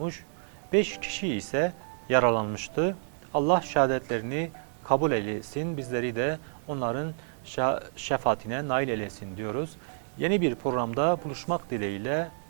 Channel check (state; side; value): silent; left; digital silence